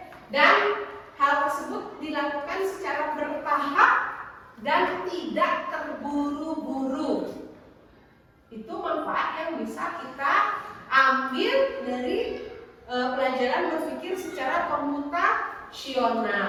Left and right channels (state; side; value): identical; both; correlation 1.00